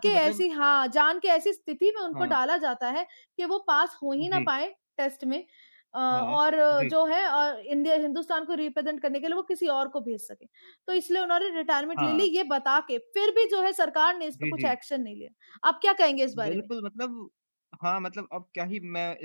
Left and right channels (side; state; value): both; inverted; correlation -1.00